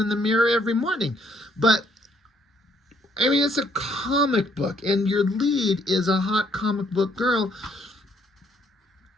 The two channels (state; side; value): normal; both; correlation 0.68